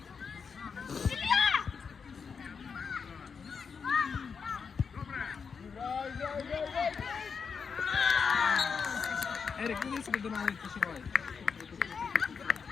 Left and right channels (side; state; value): right; quieter; 5.9 dB